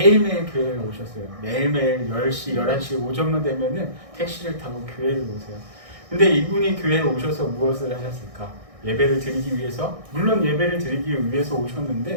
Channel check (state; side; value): late; left; 1.6 ms